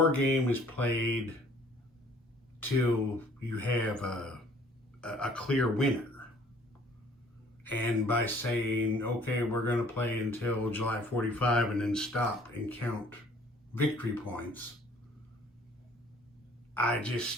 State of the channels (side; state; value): both; normal; correlation 0.57